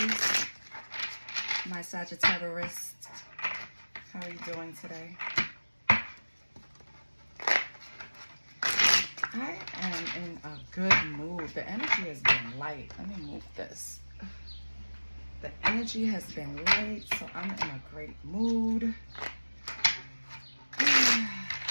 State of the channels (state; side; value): inverted; both; correlation -1.00